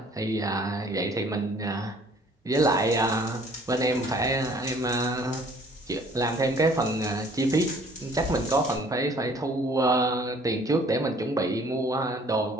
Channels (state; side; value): normal; both; correlation 0.56